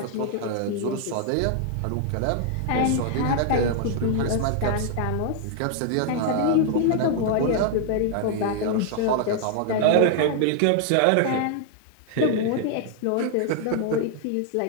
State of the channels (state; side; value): different; both; correlation 0.00